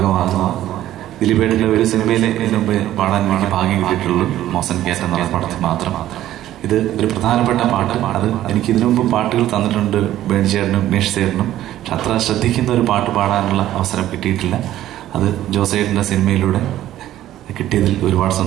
ദിലീപേട്ടൻ്റെ ഒരു സിനിമയിൽ ഇതിനു മുമ്പ് പാടാൻ വേണ്ടി ഭാഗ്യം കിട്ടിയിട്ടുള്ളൂ, മോസൻ കേറ്റ് എന്നുള്ള പടത്തിൽ മാത്രം. ഇത് ഒരു പ്രധാനപ്പെട്ട പാട്ട്. അത് എനിക്ക് ഇതിനു മുമ്പ് പാട്ടുകൾ തന്നിട്ടുണ്ട് ബേണി ചേട്ടനും ഉമേഷ് ചേട്ടനും. പക്ഷെ അത്ര ശ്രദ്ധിക്കുന്ന ഒരു പാട്ട് പാടാനുള്ള അവസരം കിട്ടിയിട്ടില്ല. അത് ജോസേട്ടൻ്റെ സിനിമയിലൂടെ കിട്ടിയതിൽ ഒരുപാട്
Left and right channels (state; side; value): quieter; left; 13.3 dB